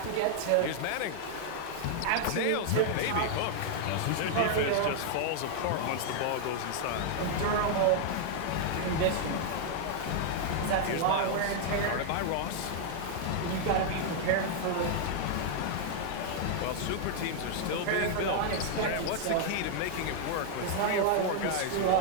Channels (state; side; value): different; both; correlation 0.00